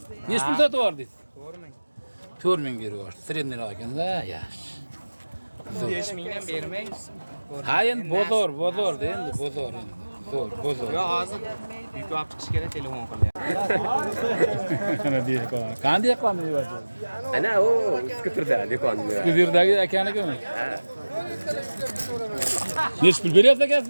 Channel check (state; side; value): inverted; both; correlation -1.00